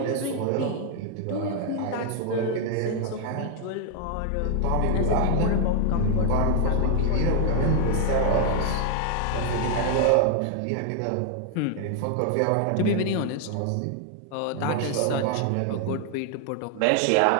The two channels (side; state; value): both; different; correlation 0.00